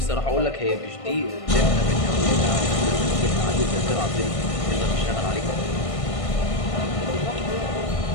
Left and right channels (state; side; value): late; right; 1.5 ms